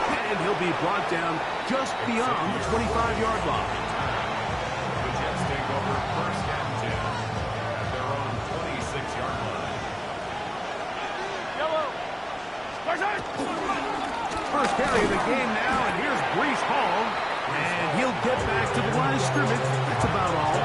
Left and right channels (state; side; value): identical; both; correlation 1.00